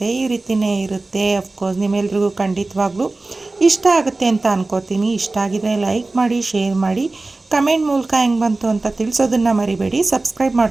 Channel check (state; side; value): quieter; left; 3.2 dB